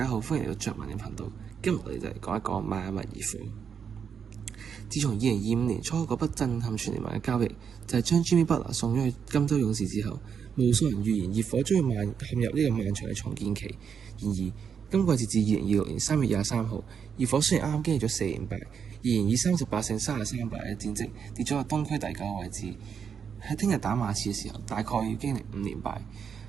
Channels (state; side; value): quieter; left; 7.1 dB